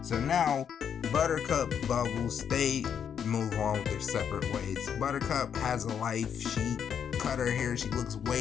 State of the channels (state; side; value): quieter; right; 8.0 dB